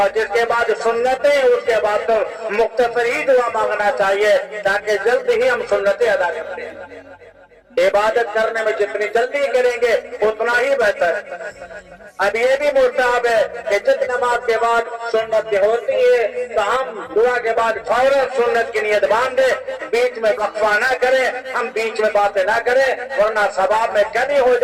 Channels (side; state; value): both; identical; correlation 1.00